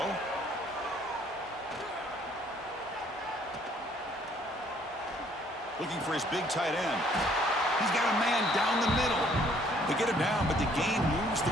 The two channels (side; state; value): both; normal; correlation 0.62